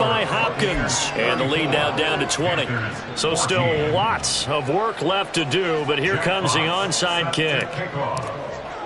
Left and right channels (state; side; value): identical; both; correlation 1.00